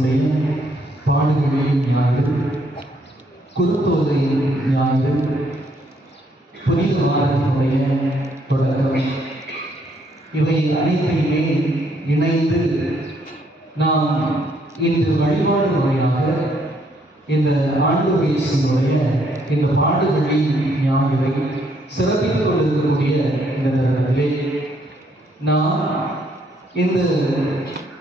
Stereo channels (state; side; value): normal; both; correlation 0.70